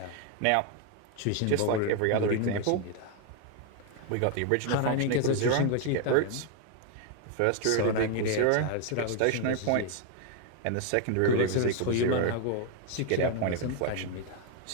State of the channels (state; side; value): different; both; correlation 0.01